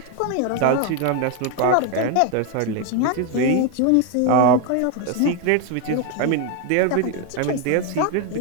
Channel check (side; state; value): both; different; correlation 0.01